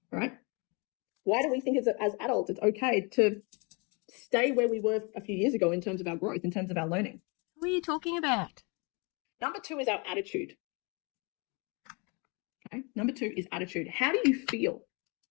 All right? Why do we think as adults it's okay to stay where we were a few years ago in terms of our growth, in terms of our learning? Who are you talking about? Number 2 is our attitude. Okay. Number 2 is attitude. How do you feel?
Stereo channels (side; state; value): right; quieter; 31.2 dB